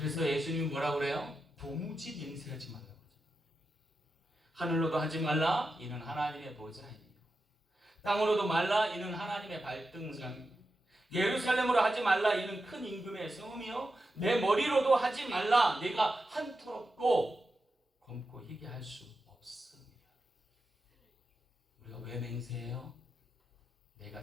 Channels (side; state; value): both; normal; correlation 0.89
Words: 예수님이 뭐라고 그래요? 도무지 맹세하지 말라고. 하늘로도 하지 말라. 이는 하나님의 보좌이니라. 땅으로도 말라. 이는 하나님의 발등상이니라. 예루살렘으로 하지 말라. 이는 큰 임금의 성음이요. 내 머리로도 하지 말라. 내가 한토롭고 검고 희게 할 수 없습니다. 우리가 왜 맹세해요?